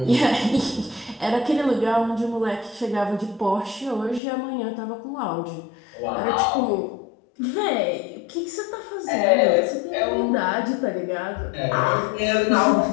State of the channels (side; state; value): right; drops out; at 4.2 s